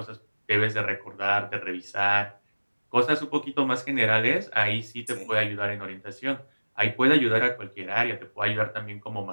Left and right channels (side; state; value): both; inverted; correlation -1.00